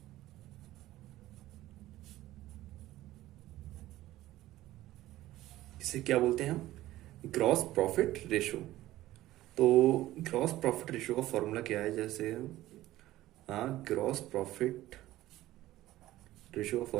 इसे क्या बोलते हैं हम? Gross profit ratio. तो ग्रॉस प्रॉफिट रेशो का फॉर्मूला क्या है? जैसे हाँ, ग्रॉस प्रॉफिट रेशो का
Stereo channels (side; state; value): left; quieter; 15.6 dB